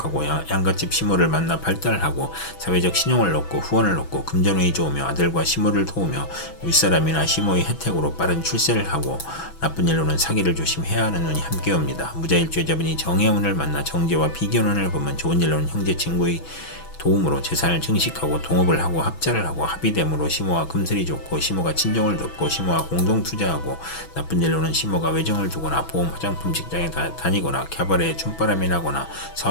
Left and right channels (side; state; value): right; late; 6.1 ms